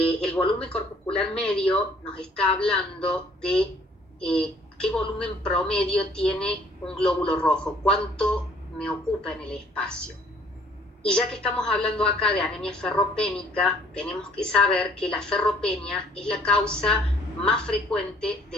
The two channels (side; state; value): both; normal; correlation 0.59